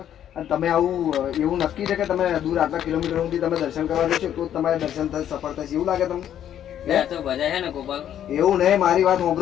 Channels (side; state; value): right; quieter; 10.4 dB